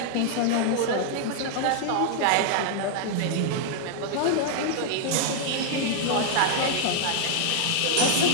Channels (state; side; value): different; both; correlation -0.01